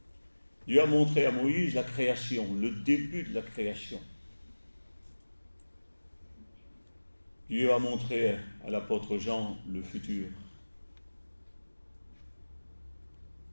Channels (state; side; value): inverted; both; correlation -1.00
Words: Dieu a montré à Moïse la création, le début de la création. Dieu a montré à l'apôtre Jean le futur.